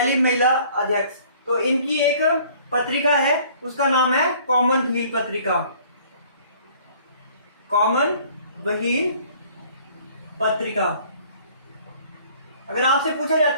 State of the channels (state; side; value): inverted; both; correlation -0.55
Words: महिला अध्यक्ष। तो इनकी एक पत्रिका है, उसका नाम है कॉमनवेल्थ पत्रिका। कॉमनवेल्थ पत्रिका। अगर आपसे पूछा